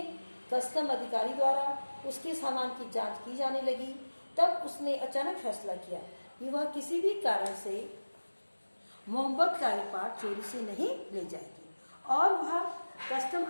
कस्टम अधिकारी द्वारा उसके सामान की जांच की जाने लगी, तब उसने अचानक फैसला किया कि वह किसी भी कारण से मोहब्बत का उपहार चोरी से नहीं ले जाएगी और वह कस्टम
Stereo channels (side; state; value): both; inverted; correlation -1.00